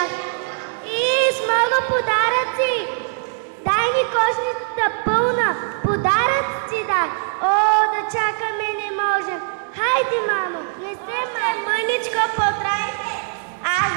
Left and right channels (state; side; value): silent; left; digital silence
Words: И с много подаръци. Дай ни кошницата пълна, подаръци дай. О, да чакаме не можем. Хайде, мамо, не се мъничко потрайте. Аз